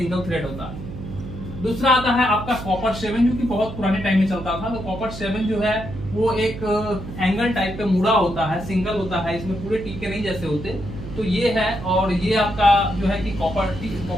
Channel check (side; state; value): right; noise; hum, 10 dB below the sound